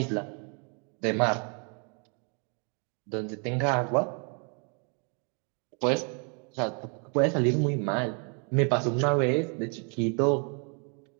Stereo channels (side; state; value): left; quieter; 39.3 dB